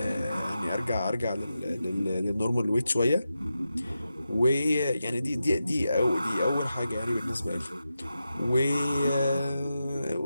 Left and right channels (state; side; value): inverted; both; correlation -0.90